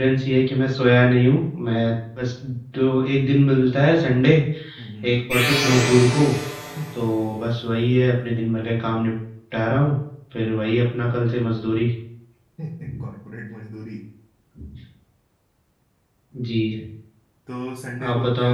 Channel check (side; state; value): both; identical; correlation 1.00